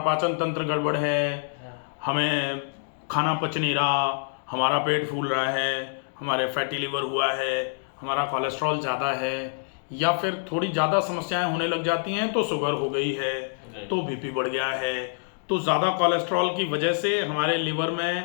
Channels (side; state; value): right; silent; digital silence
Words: पाचन तंत्र गड़बड़ है, हमें खाना पच नहीं रहा, हमारा पेट फूल रहा है, हमारे फैटी लिवर हुआ है, हमारा कोलेस्ट्रॉल ज़्यादा है, या फिर थोड़ी ज़्यादा समस्याएं होने लग जाती हैं तो शुगर हो गई है, तो बीपी बढ़ गया है, तो ज़्यादा कोलेस्ट्रॉल की वजह से हमारे लिवर